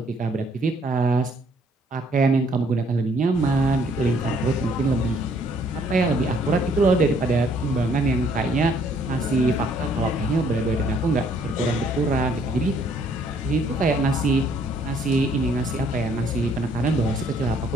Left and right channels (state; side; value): normal; both; correlation 0.64